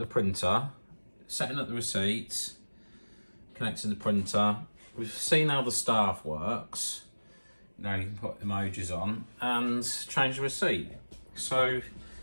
printer, setting up the receipts, connecting the printer. We've seen how the staff works. Now you can put emojis on and change the receipt. So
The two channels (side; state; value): both; inverted; correlation -1.00